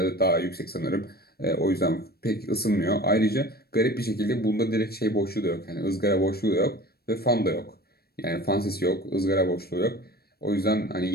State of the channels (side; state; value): right; late; 0.46 ms